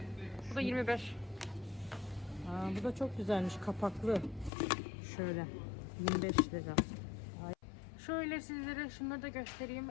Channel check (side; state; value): right; drops out; at 4.5 s